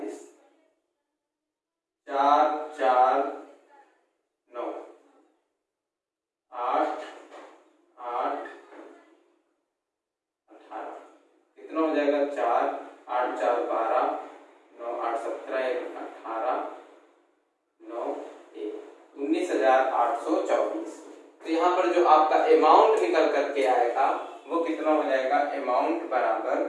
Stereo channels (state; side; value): identical; both; correlation 1.00